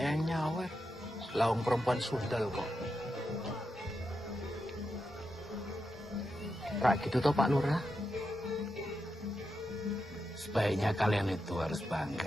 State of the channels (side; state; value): both; normal; correlation 0.87